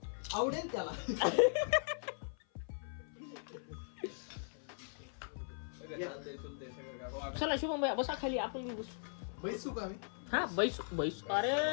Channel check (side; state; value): right; silent; 52 dB below the other